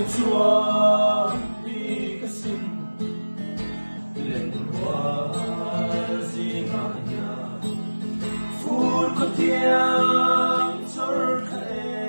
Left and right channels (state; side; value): inverted; both; correlation -1.00